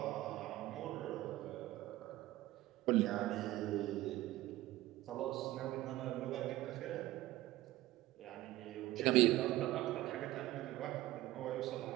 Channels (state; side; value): quieter; left; 16.6 dB